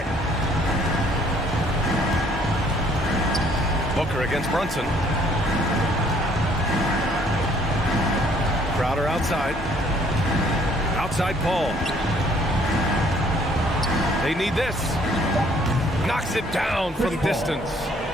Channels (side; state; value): both; normal; correlation 0.61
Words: it. Booker against Brunson. Crowder outside. Outside Paul. They need this. Knocks it down from distance.